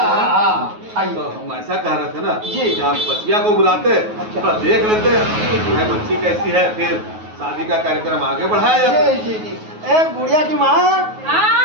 आइए। तो हम ऐसा कह रहे थे ना जी। कि आप बच्चिया को बुलाते अच्छा। थोड़ा देख लेते हैं बच्ची कैसी है फिर शादी का कार्यक्रम आगे बढ़ाया जाए। जी जी जी ए गुड़िया की माँ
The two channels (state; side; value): late; left; 9.4 ms